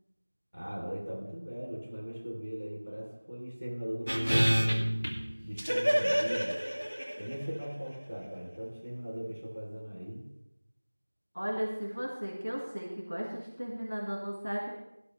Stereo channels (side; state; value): both; inverted; correlation -1.00